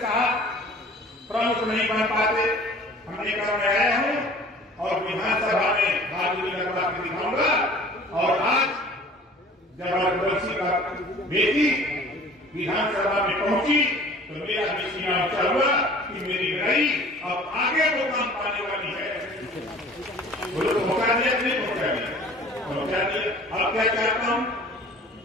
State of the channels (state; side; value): normal; both; correlation 0.47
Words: साहब प्रमुख नहीं बन पाते। हमने कहा मैं आया हूँ और विधानसभा में बहादुरी लगवा के दिखाऊंगा। और आज जब रघुवंशी का बेटी विधानसभा में पहुंची तो मेरा भी सीना ऊंचा हुआ कि मेरी लड़ाई अब आगे वो काम पाने वाली है। बोलो पहुंचा दिया कि नहीं पहुंचा दिया? पहुंचा दिया। अब क्या चाहता हूं,